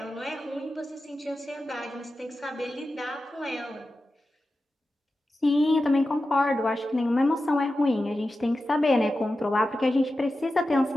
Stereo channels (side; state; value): both; normal; correlation 0.92